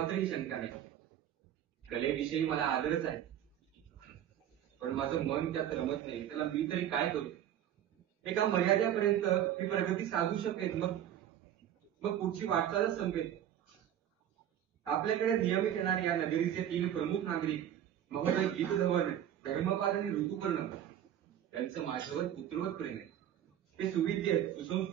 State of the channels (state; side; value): quieter; left; 10.7 dB